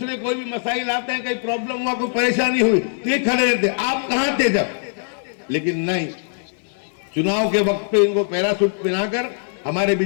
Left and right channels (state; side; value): silent; right; digital silence